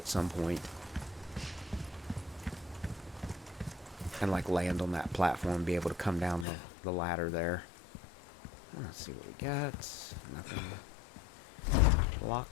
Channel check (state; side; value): drops out; right; at 6.5 s